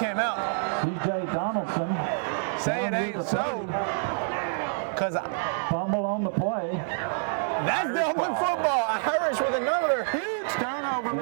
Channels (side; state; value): left; silent; 60 dB below the other